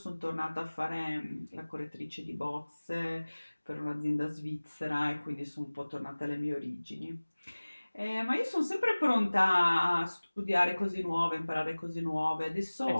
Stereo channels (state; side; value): inverted; both; correlation -1.00